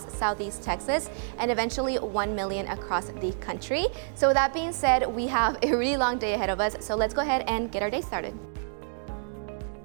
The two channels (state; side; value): silent; left; digital silence